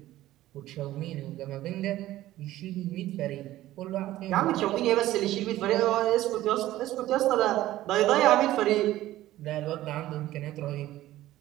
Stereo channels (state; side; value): quieter; left; 15.1 dB